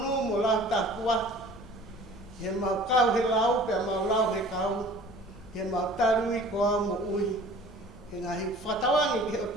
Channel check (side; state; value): both; normal; correlation 0.46